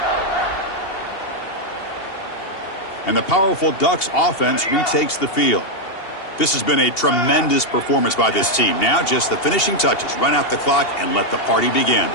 And the powerful Ducks offense retakes the field. This has been a tremendous performance by this team. Now just the finishing touches. Run out the clock and let the party begin.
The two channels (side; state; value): right; late; 2.8 ms